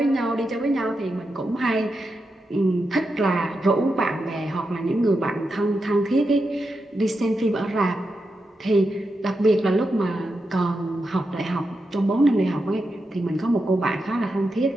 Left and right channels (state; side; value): normal; both; correlation 0.87